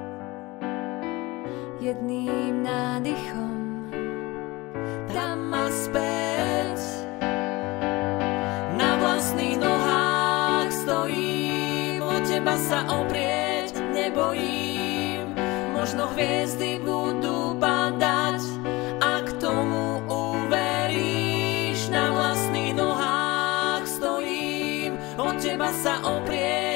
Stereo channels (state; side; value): quieter; right; 22.1 dB